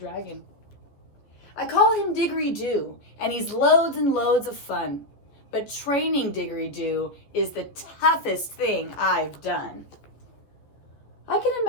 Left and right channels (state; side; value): late; right; 14 ms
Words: I call him Diggory Doo, and he's loads and loads of fun. But training Diggory Doo is the toughest thing I've done. I can